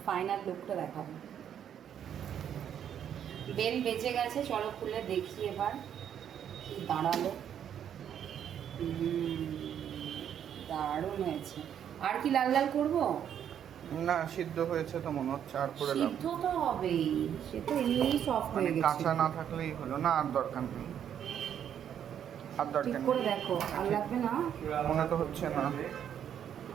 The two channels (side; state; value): left; quieter; 9.2 dB